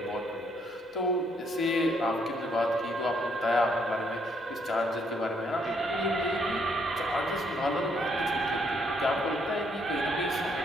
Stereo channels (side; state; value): both; normal; correlation 0.71